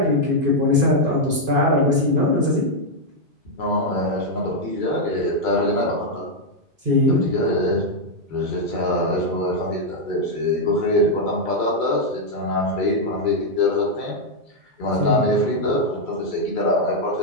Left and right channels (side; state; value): left; late; 2.5 ms